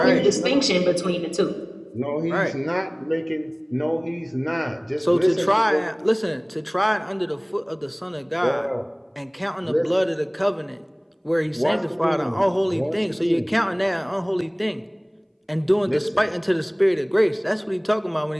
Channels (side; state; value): both; identical; correlation 1.00